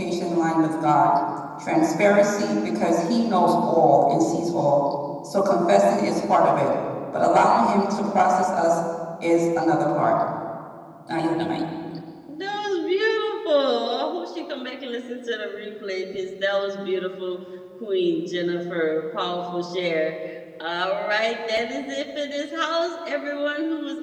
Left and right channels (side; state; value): both; identical; correlation 1.00